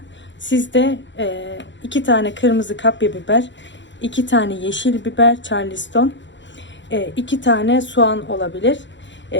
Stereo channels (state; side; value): late; right; 0.53 ms